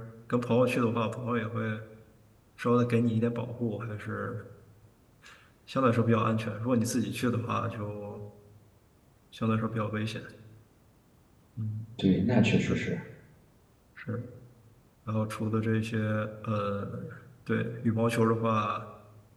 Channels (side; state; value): both; identical; correlation 1.00